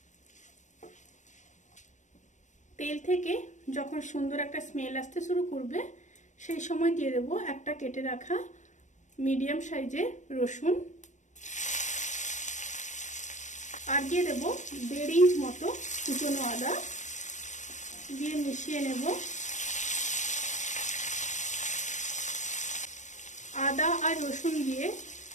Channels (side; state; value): right; late; 0.35 ms